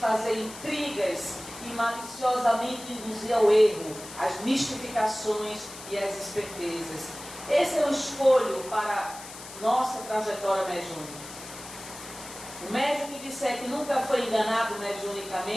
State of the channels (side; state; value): left; noise; hiss, 14 dB below the sound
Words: intrigas e maliciosamente induzir ao erro, as mistificações e as espertezas. Esse é o escolho para nossa trajetória mediúnica. O médium que disser que nunca foi enganado